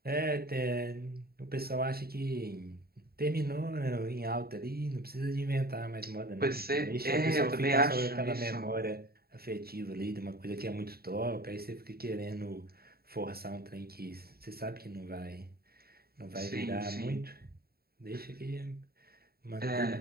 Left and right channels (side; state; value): left; late; 0.45 ms